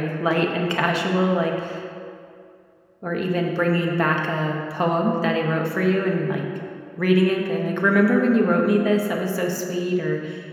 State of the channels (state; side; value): identical; both; correlation 1.00